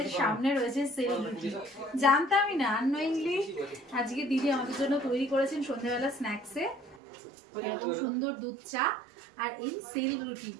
সামনে রয়েছে সেল রুটি। জানতামই না, আননোয়িংলি আজকে দিদি আমাদের জন্য তৈরি করেছেন সন্ধ্যাবেলা স্ন্যাক্সে এরকম সুন্দর দুধ চা আর এই সেল রুটি।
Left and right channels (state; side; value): drops out; left; at 7.0 s